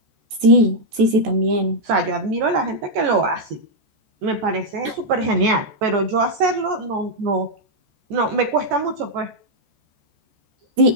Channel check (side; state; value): left; late; 14 ms